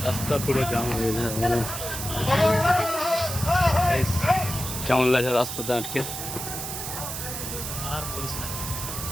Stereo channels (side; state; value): right; noise; hiss, 6 dB below the sound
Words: রাস্তা পুরো জাম হয়ে যায়, কেমন লাগছে রাস্তাতে আটকে? আর বলিস না,